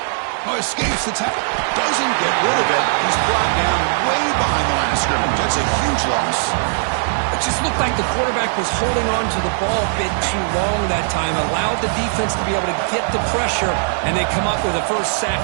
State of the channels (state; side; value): silent; left; digital silence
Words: Oh, escapes the tackle. Doesn't get rid of it. He's brought down way behind the line of scrimmage. That's a huge loss. It just looked like the quarterback was holding on to the ball a bit too long that time, allowed the defense to be able to get the pressure, and they come up with the first